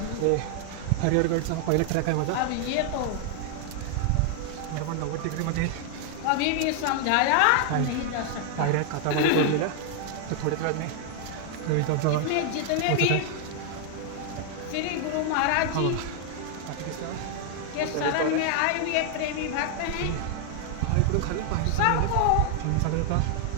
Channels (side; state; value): both; different; correlation 0.00